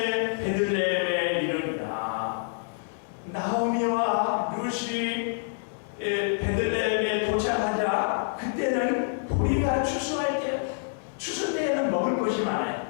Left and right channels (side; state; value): right; silent; digital silence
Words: 베들레헴에 이르니라. 나오미와 룻이 베들레헴에 도착하자 그때는 보리가 추수할 때 추수 때에는 먹을 것이